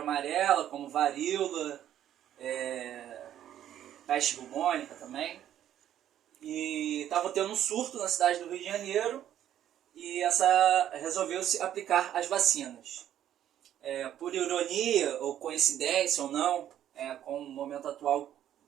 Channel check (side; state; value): left; quieter; 11.1 dB